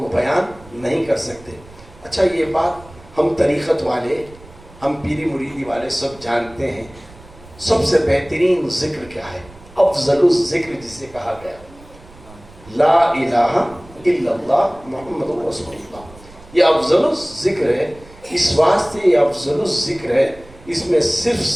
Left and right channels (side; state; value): right; noise; rumble, 22 dB below the sound